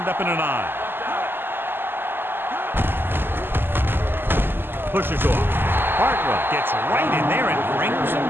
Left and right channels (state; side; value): late; left; 0.099 ms